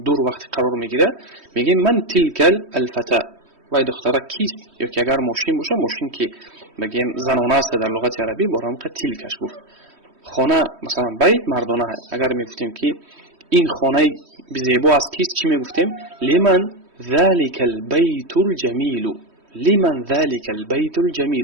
دور وقت قرار میگیره، میگه من تلك الفتاة، وای دختره کیست؟ یا که اگر ماشین باشه، ماشین که بگیم زنانه است در لغت عربی، برام که تلکش گفت. خانه مثلا بیت مردانه های، اگر میگفتیم که این خانه زیبا از کیست، چی میگفتیم؟ لمن ذلك البيت الجميل، لمن ذلك البيت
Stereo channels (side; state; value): left; late; 3.1 ms